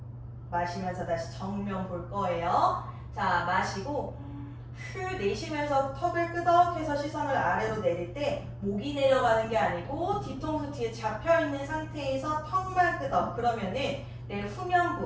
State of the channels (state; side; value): identical; both; correlation 1.00